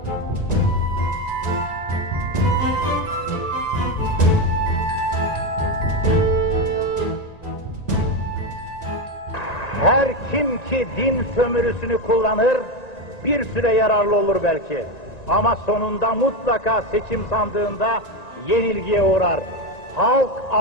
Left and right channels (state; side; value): late; right; 1.9 ms